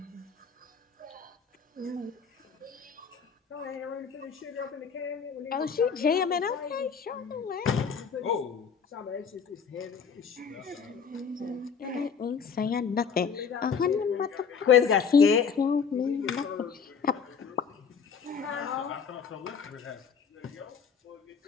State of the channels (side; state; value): right; quieter; 6.3 dB